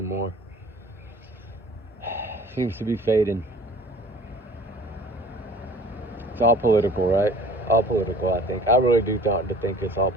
Seems to be fading. It's all political, right? All political, I think. I really do think it's all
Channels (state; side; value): normal; both; correlation 0.48